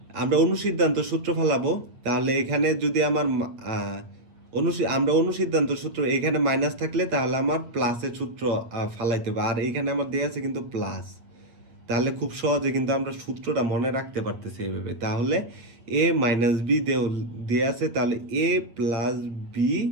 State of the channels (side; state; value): left; late; 8.3 ms